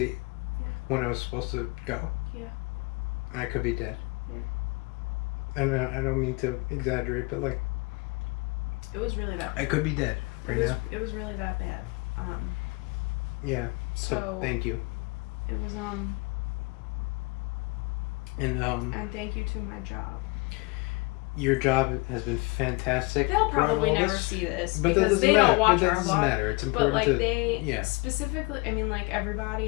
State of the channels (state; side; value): quieter; right; 26.2 dB